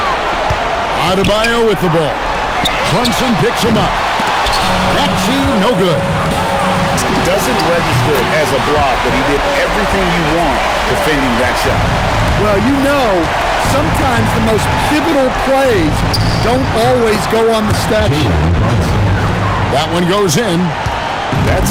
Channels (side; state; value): both; identical; correlation 1.00